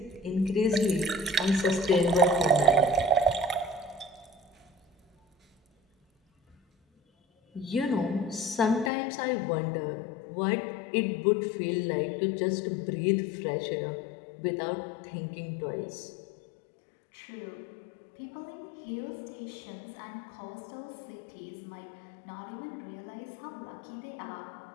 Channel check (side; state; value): right; drops out; at 8.9 s